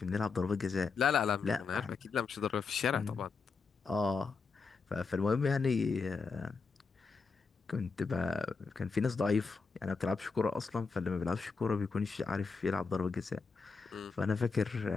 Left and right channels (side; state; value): right; quieter; 4.8 dB